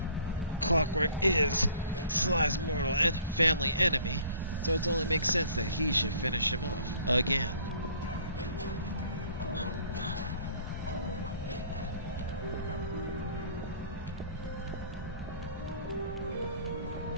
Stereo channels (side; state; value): both; inverted; correlation -0.53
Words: Clockwork is Sly's mortal and family enemy. So it only makes sense that he should finish him off. Again.